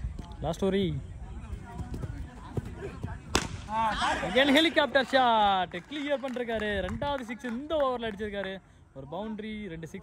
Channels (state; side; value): identical; both; correlation 1.00